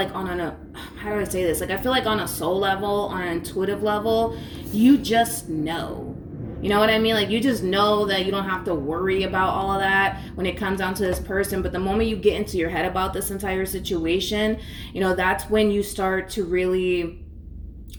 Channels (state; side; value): identical; both; correlation 1.00